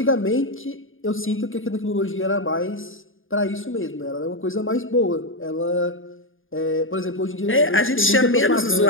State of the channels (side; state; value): right; late; 0.59 ms